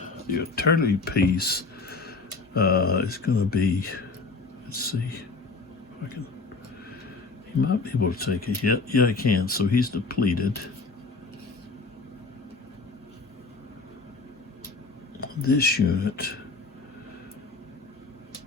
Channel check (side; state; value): right; quieter; 4.0 dB